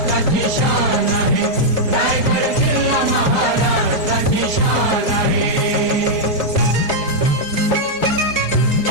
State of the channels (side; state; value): left; late; 4.6 ms